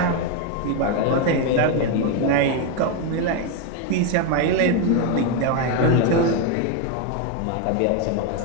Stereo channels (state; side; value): different; both; correlation 0.02